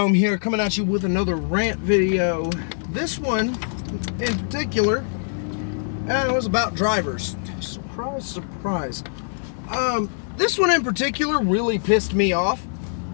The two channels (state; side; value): silent; right; 58 dB below the other